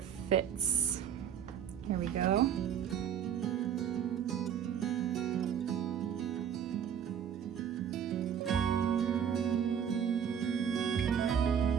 fits. Here we go.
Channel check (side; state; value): left; quieter; 8.5 dB